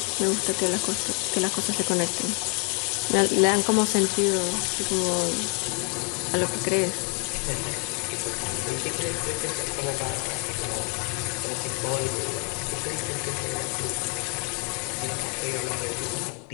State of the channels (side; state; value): right; quieter; 36.6 dB